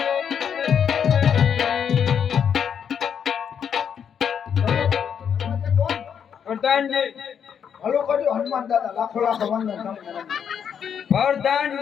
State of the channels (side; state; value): right; quieter; 7.8 dB